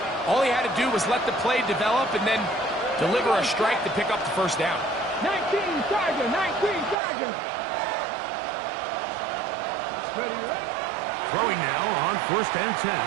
All he had to do was let the play develop and then deliver a strike to pick up the first down. 19 Tiger, 19 Tiger. Ready, ready. Throwing now on first and 10.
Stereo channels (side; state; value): left; drops out; at 7.0 s